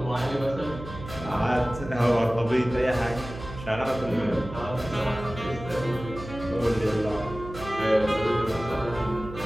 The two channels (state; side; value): noise; right; hum, 12 dB below the sound